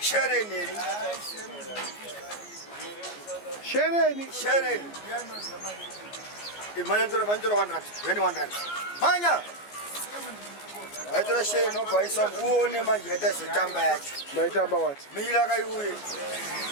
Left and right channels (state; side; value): late; right; 14 ms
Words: Shereni. Imanya tora 100. When 100. Manya. Aitora shereni no kwaisa uone manje hata sitamba yacho. Maitamba what? Mila kayuye.